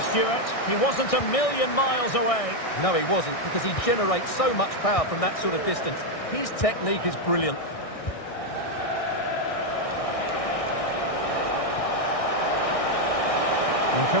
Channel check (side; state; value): right; late; 1.6 ms